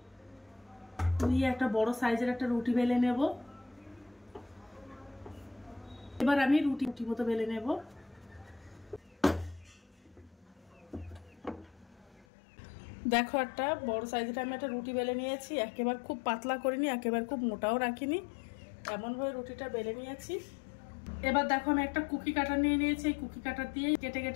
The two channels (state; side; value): drops out; right; at 12.2 s